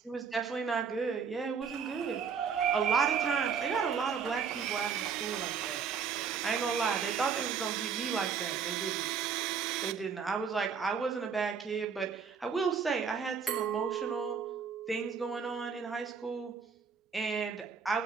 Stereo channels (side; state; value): left; quieter; 6.3 dB